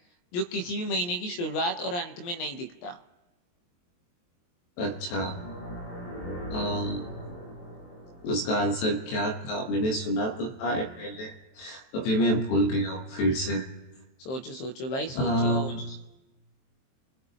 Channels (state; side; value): late; right; 23 ms